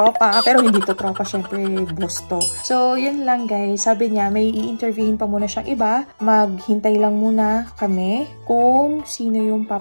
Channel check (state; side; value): inverted; both; correlation -1.00